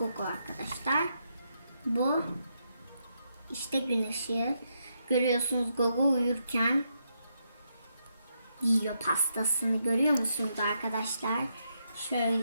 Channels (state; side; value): inverted; both; correlation -0.80